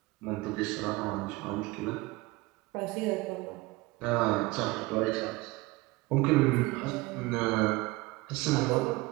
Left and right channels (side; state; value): left; quieter; 21.5 dB